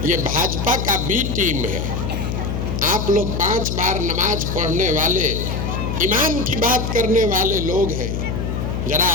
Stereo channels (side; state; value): left; noise; hum, 2 dB below the sound